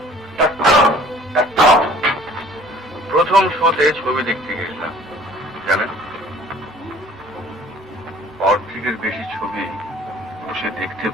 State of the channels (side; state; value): both; normal; correlation 0.51